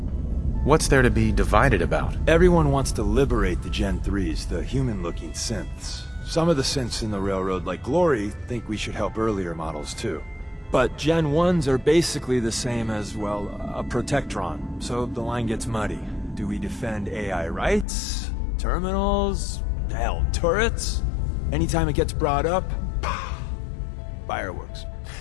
What's there to be divided about? Everyone wants to liberate the Gen 3s, the human-looking synths. Some of the synths in the Railroad, like Glory, think we should help earlier models too. But Gen 1s are basically the same as, well, a Protectron, so the line gets muddy. Do we defend AI rights? Terminals? Hell, turrets? Anytime it gets brought up, fireworks.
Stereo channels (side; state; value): right; drops out; at 17.9 s